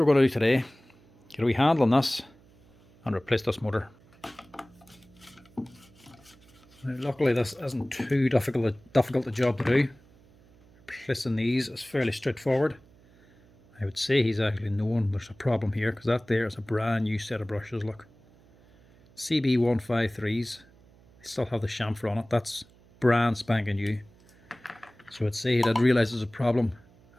we're going to do today. Get a wee handle on this and replace this motor. Now, luckily this isn't too difficult a job to do. Replacing these is fairly straightforward. I would say he's actually known there's a problem here, because that there is a brand new set of brushes. Look, CB153s. They still have the chamfer on it. That's brand spanking new. So I'd say he did realise there's a problem,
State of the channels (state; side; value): noise; right; hum, 28 dB below the sound